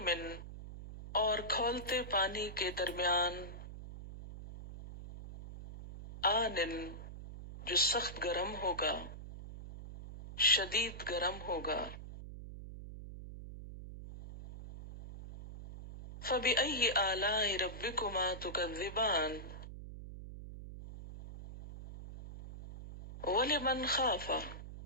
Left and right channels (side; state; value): right; noise; hum, 11 dB below the sound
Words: اور کھولتے پانی کے درمیان، آنن، جو سخت گرم ہوگا، شدید گرم ہوگا، فبأی آلاء ربکما تکذبان، ولمن خاف،